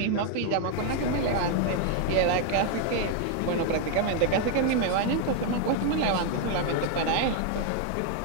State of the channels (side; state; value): both; different; correlation 0.00